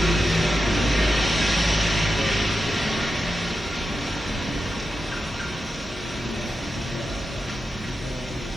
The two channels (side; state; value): both; normal; correlation 0.90